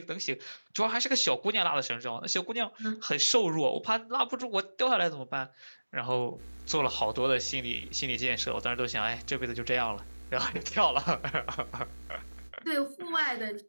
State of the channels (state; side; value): inverted; both; correlation -1.00